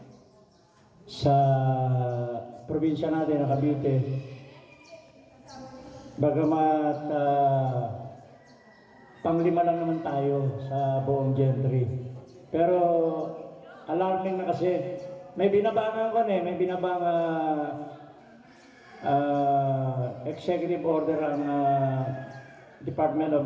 sa probinsya natin na Cavite. Bagamat panglima lang naman tayo sa buong Gentry. Pero alarming na kasi. May binabangan ko may executive order ang Department of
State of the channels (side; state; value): both; identical; correlation 1.00